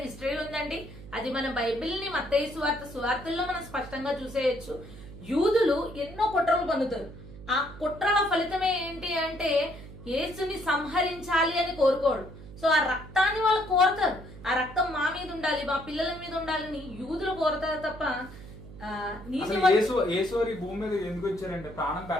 హిస్టరీ ఉందండి. అది మన బైబిల్ ని మత్తయి సువార్తల్లో మనం స్పష్టంగా చూసేయచ్చు. యూదులు ఎన్నో కుట్రలు పొందుతారు. ఆ కుట్రల ఫలితమే ఏంటి అంటే యేసుని సంహరించాలి అని కోరుకోడు. సో ఆ రక్తాన్ని వాళ్ళు కోరతారు, ఆ రక్తం మా మీద ఉండాలి, మా పిల్లల మీద ఉండాలని యూదులు కోరతారు తప్ప యేసు ఈ భూమి మీద ఎందుకు వచ్చారంటే ప్రాణం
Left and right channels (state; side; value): noise; right; hum, 16 dB below the sound